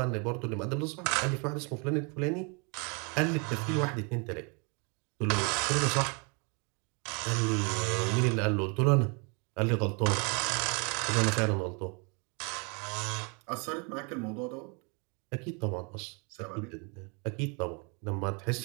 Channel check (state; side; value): quieter; left; 34.0 dB